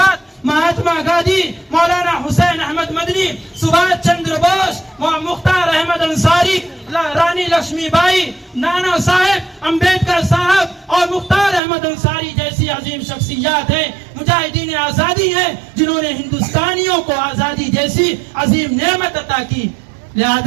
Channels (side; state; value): left; drops out; at 11.6 s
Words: مہاتما گاندھی، مولانا حسین احمد مدنی، سبھاش چندر بوس، مختار احمد انصاری، رانی لکشمی بائی، نانا صاحب امبیڈکر صاحب اور مختار احمد انصاری جیسی عظیم شخصیات ہیں، مجاہدین آزادی ہیں، جنہوں نے ہندوستانیوں کو آزادی جیسی عظیم نعمت عطا کی۔